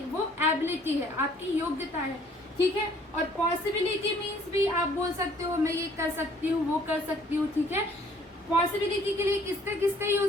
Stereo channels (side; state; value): both; normal; correlation 0.58